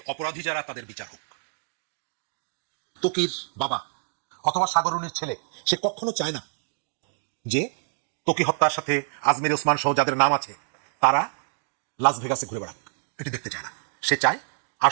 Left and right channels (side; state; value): left; silent; digital silence